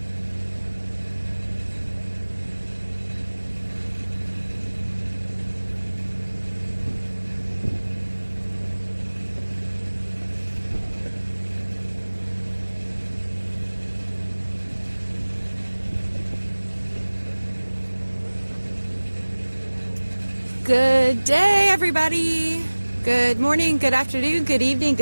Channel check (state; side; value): inverted; both; correlation -1.00